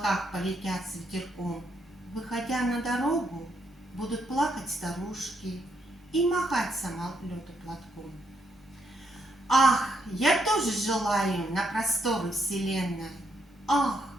полетят с ветерком. Выходя на дорогу, будут плакать старушки и махать самолету платком. Ах, я тоже желаю на просторы вселенной. Ах,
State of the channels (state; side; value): normal; both; correlation 0.76